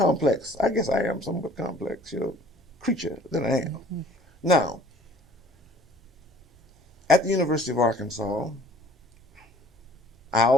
I guess I am somewhat complex, creature than I am. Mm-hmm. Now, at the University of Arkansas, I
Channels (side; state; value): both; normal; correlation 0.54